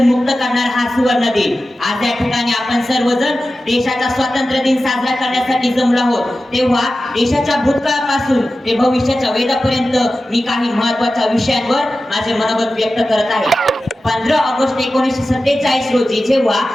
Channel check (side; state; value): both; normal; correlation 0.94